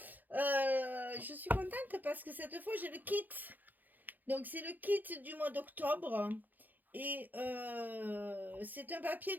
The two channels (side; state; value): left; late; 0.085 ms